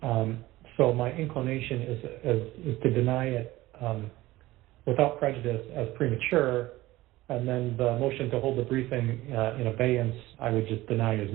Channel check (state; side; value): quieter; left; 17.8 dB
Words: So my inclination is to deny it without prejudice as premature, and then the motion to hold the briefing in abeyance, I would just deny as